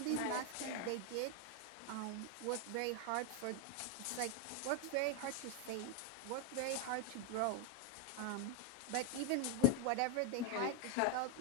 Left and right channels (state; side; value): different; both; correlation 0.01